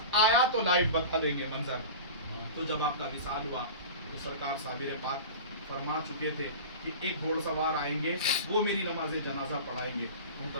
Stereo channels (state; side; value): inverted; both; correlation -0.33